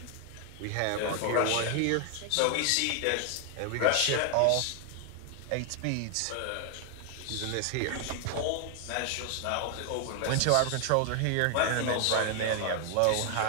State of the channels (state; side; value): different; both; correlation 0.00